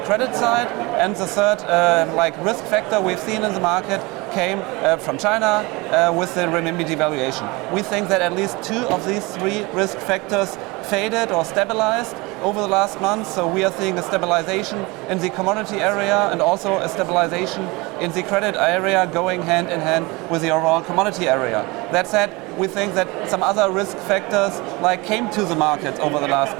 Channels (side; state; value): left; quieter; 24.5 dB